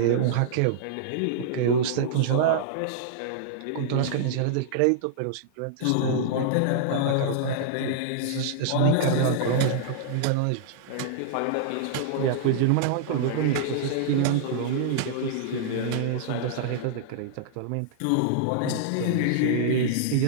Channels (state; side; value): different; both; correlation -0.02